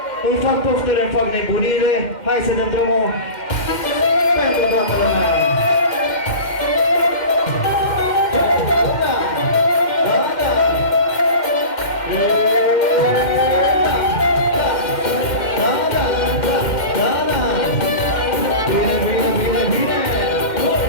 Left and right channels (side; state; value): right; late; 2.1 ms